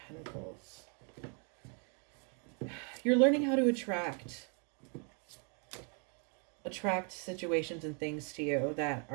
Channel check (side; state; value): left; quieter; 38.5 dB